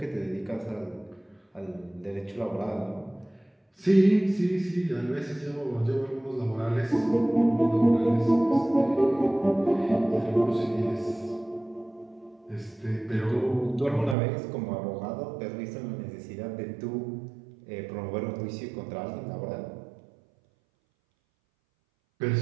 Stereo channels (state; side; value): drops out; left; at 14.2 s